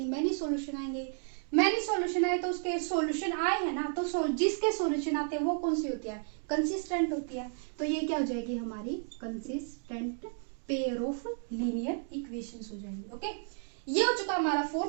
many solution आएंगे। मैनी सॉल्यूशन आए तो उसके सॉल्यूशन आए हैं ना, तो जिसके सॉल्यूशन आते हैं वो कौन सी होती है कंसिस्टेंट होती है। तो ये क्या हो जाएगी हमारी consistent pair of linear equations हो जाएंगी। ओके, ये हो चुका हमारा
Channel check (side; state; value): left; silent; 56 dB below the other